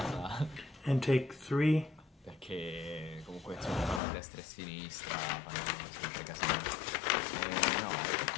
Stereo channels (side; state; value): right; drops out; at 4.0 s